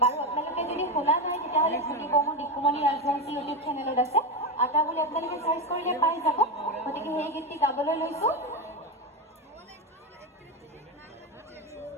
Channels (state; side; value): normal; both; correlation 0.14